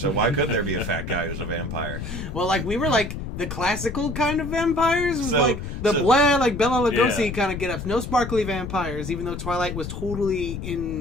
why couldn't there be a fat guy who's a vampire? Well, like, we were like the classical kind of vampires. It was like the like Bela Lugosi kind of get-ups. No sparkly vampires, even though Twilight was totally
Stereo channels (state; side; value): noise; left; rumble, 7 dB below the sound